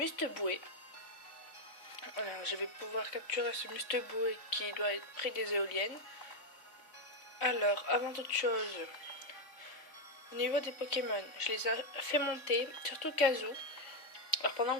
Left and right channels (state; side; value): late; right; 3.5 ms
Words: Alors je vais pouvoir capturer ce Musteboué qui doit être près des éoliennes. Alors, avant toute chose, au niveau des Pokémon, je les ai fait monter, surtout Kazu. Alors pendant